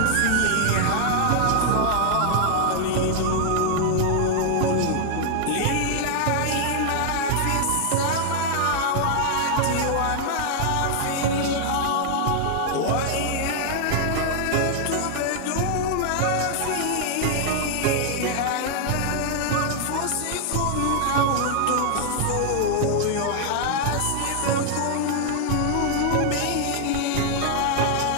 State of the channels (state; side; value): different; both; correlation 0.00